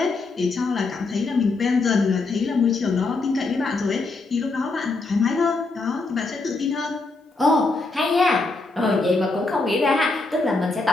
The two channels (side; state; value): right; quieter; 3.6 dB